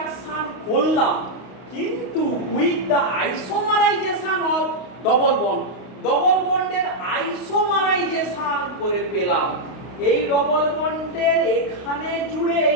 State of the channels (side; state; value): right; late; 31 ms